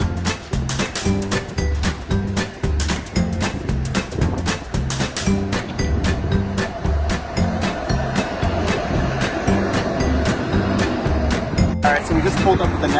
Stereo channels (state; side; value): identical; both; correlation 1.00